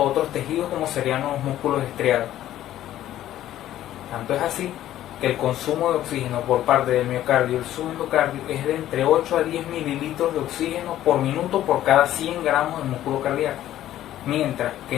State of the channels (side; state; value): right; quieter; 12.9 dB